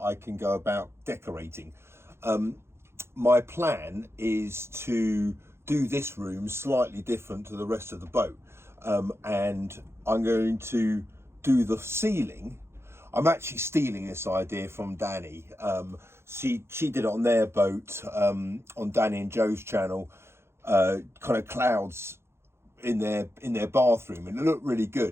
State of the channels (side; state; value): left; late; 0.12 ms